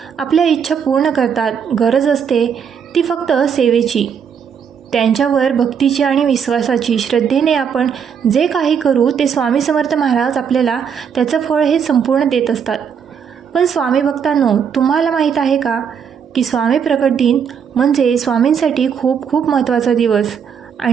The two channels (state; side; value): quieter; left; 7.2 dB